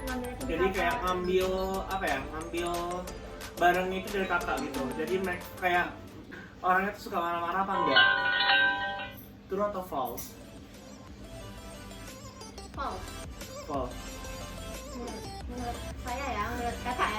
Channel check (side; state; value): both; identical; correlation 1.00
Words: jadi kayak ngambil barangnya itu dari kakak gitu. Jadi mereka kayak orangnya tuh suka marah-marah apa enggak? True atau false? False. Menurut saya ya, menurut kakak